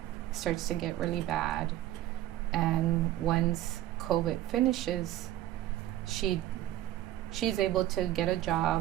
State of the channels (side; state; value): left; quieter; 14.0 dB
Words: starts to get really bad, and once COVID finishes, she's able to get a